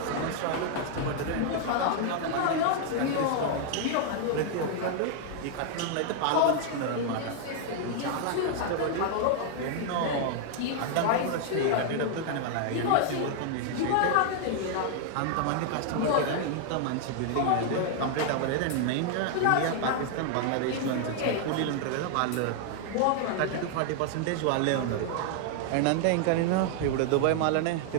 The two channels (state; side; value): different; both; correlation 0.00